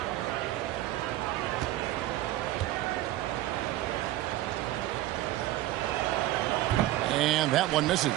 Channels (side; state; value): left; quieter; 15.4 dB